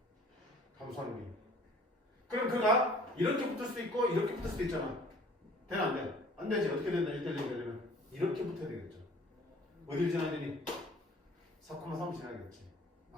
감소하는 게. 그럼 그가 이렇게 붙을 수도 있고 이렇게 붙을 수도 있잖아. 되나 안 돼? 안 되지. 어떻게 된다? 1대1 되려면 이렇게 붙어야 되겠죠. 어디를 지나야 되니? 4,3을 지나야겠지.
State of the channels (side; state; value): both; normal; correlation 0.51